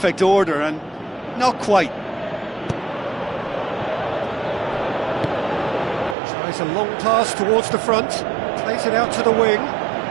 order, and not quite. Tries a long pass towards the front, plays it out to the wing.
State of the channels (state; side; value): drops out; left; at 6.2 s